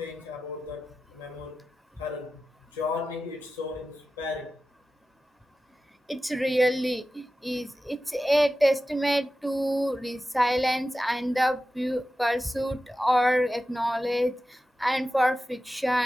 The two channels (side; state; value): both; normal; correlation 0.93